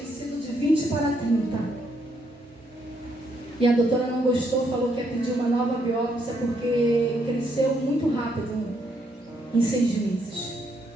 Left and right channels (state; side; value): normal; both; correlation 0.74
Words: de 20 para 30. E a doutora não gostou, falou que ia pedir uma nova biópsia porque cresceu muito rápido, em 6 meses.